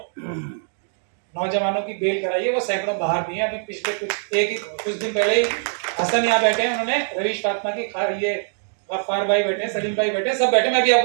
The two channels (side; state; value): left; silent; digital silence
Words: नौजवानों की बेल कराई है, वो सैकड़ों बाहर भी हैं। अभी पिछले कुछ दिन पहले ही हसन यहाँ बैठे हैं, उन्होंने रवीश फातिमा की ये गफ्फार भाई बैठे हैं, सलीम भाई बैठे हैं, सब बैठे, मैं भी